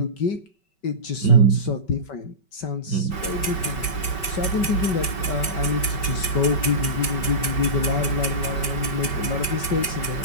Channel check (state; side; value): late; right; 5.3 ms